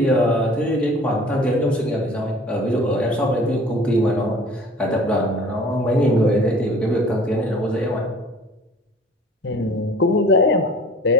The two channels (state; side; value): normal; both; correlation 0.48